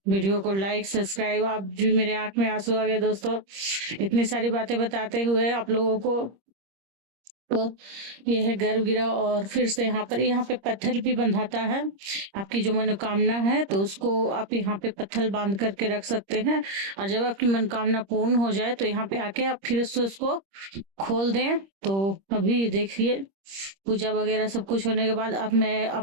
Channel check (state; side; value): late; left; 26 ms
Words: वीडियो को लाइक, सब्सक्राइब। आप जी मेरे आंख में आंसू आ गए दोस्तों, इतनी सारी बातें बताते हुए आप लोगों को। तो ये है गर्भगृह। और फिर से यहाँ पे पत्थर भी बंधाता है। आपकी जो मनोकामना है तो उसको आप यहाँ पे पत्थर बांध करके रख सकते हैं। और जब आपकी मनोकामना पूर्ण हो जाए तो यहाँ पे आके आप फिर से उसको खोल दें। तो अभी देखिए पूजा वगैरह सब कुछ होने के बाद अब मैं